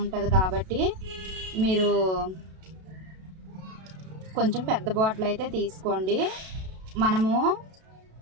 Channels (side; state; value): left; late; 32 ms